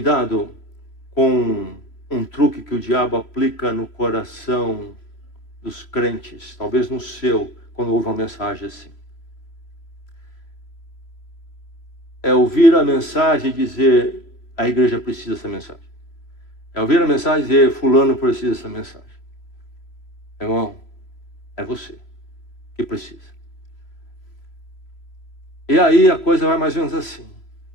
com um truque que o diabo aplica no coração dos crentes, talvez no seu, quando ouve uma mensagem assim. É ouvir a mensagem e dizer, a igreja precisa dessa mensagem. É ouvir a mensagem e dizer, fulano precisa dessa mensagem. Irmão, é você que precisa. E aí a coisa vai mais ou menos assim.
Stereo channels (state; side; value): late; right; 3.0 ms